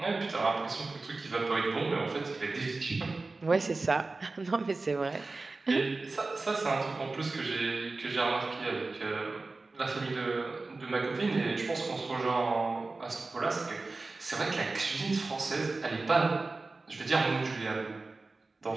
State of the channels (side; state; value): left; quieter; 3.5 dB